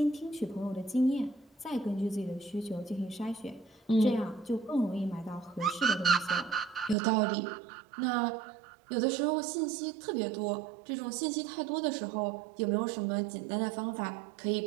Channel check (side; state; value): left; drops out; at 7.0 s